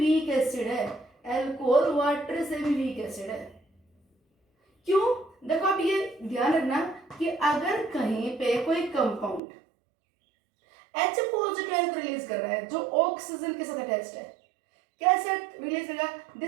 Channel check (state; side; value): drops out; left; at 9.4 s